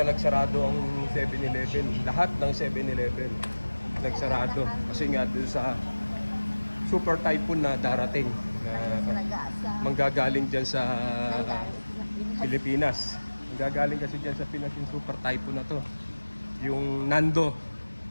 nagsarado ang 7-Eleven. Lahat ng 7-Eleven nagsarado kasi nga doon sa super typhoon na darating na manggagaling dyan sa Pilipinas. Manggagaling kasi dyan sa Pinas yung super typhoon na to. Yung Nando.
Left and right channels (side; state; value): both; inverted; correlation -1.00